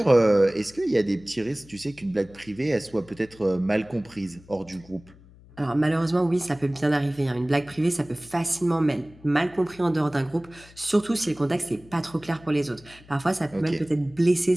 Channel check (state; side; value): noise; left; hum, 24 dB below the sound